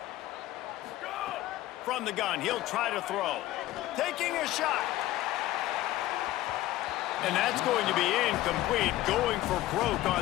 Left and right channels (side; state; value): right; quieter; 15.6 dB